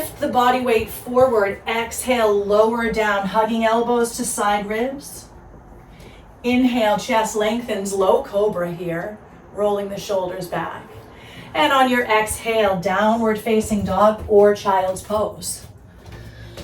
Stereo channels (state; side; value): identical; both; correlation 1.00